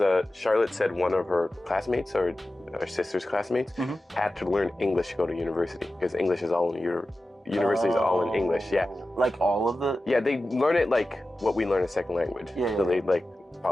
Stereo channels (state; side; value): normal; both; correlation 0.94